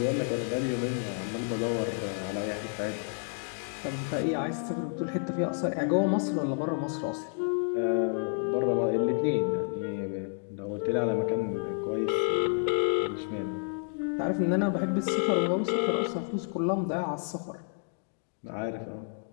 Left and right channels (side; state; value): right; silent; 58 dB below the other